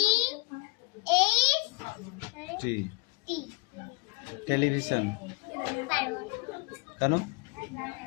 T television. কেন?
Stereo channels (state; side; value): quieter; right; 30.7 dB